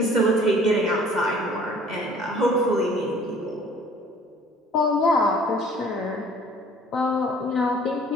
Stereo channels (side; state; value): both; normal; correlation 0.53